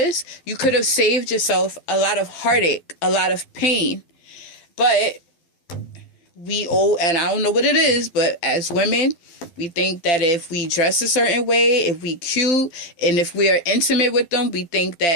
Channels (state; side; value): late; right; 12 ms